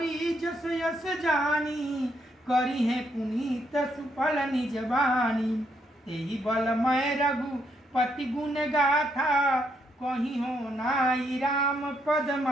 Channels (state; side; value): normal; both; correlation 0.75